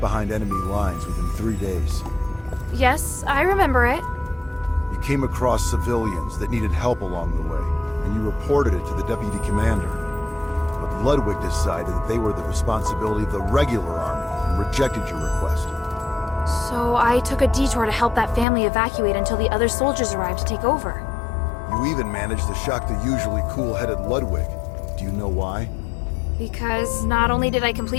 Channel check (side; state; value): right; drops out; at 18.4 s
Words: enemy lines within 3 days. Yes, I remember it. You came across civilians that needed help along the way, and you reported it to the deputy commander. But Ludwig decided that they were the responsibility of the regular army and rejected your request. So I took a detour to help that family evacuate until the other soldiers arrived to take over. You even managed to shock the usually cool-headed Ludwig. Do you know why? Because not only did I